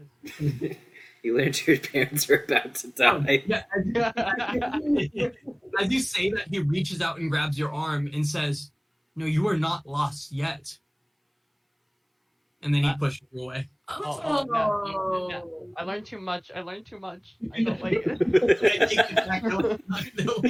is... You learned your parents were about to die. Yeah, as you say that, he reaches out and grabs your arm and says, "No, you are not lost yet." And then he pushes you away. Oh, no. I learned too much. I learned too much. I don't like it.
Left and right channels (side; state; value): both; identical; correlation 1.00